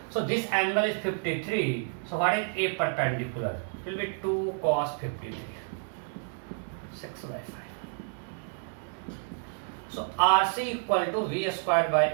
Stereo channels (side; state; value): left; silent; 58 dB below the other